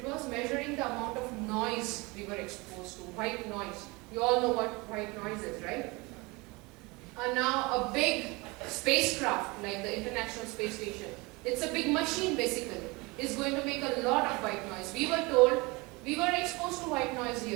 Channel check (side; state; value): left; quieter; 25.0 dB